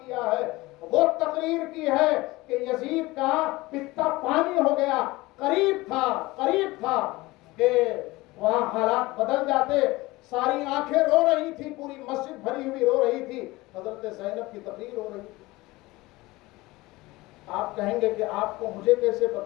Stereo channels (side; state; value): right; quieter; 20.6 dB